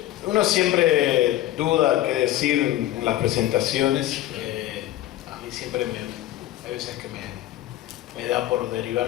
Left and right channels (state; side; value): quieter; right; 14.1 dB